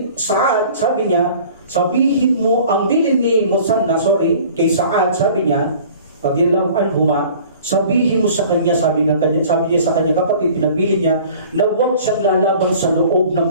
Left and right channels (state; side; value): inverted; both; correlation -0.47